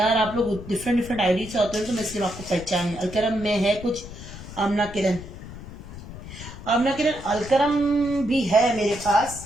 आप लोग डिफरेंट डिफरेंट आईडी से होते हैं तो मैं इसलिए आपको पहचान। अलकरम में है कुछ, आमना किरण, आमना किरण अलकरम भी है मेरे पास,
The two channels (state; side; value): noise; left; rumble, 13 dB below the sound